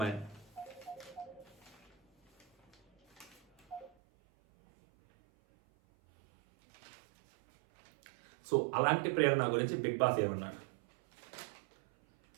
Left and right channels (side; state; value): left; drops out; at 3.9 s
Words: సో అలాంటి ప్రేరణ గురించి బిగ్ బాస్ ఏమన్నాడు?